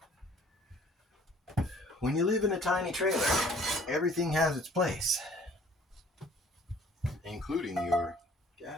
When you live in a tiny trailer, everything has its place, including your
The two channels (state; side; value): normal; both; correlation 0.54